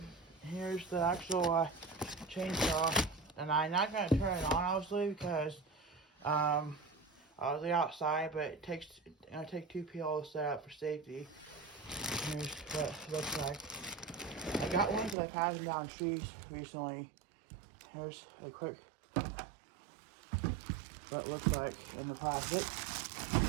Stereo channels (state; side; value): drops out; left; at 15.2 s